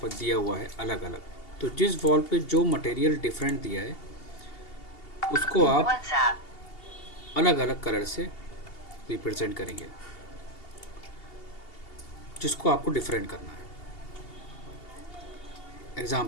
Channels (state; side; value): late; right; 2.8 ms